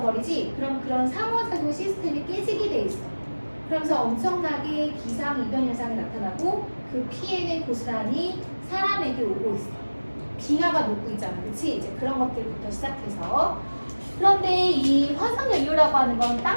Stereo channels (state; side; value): inverted; both; correlation -1.00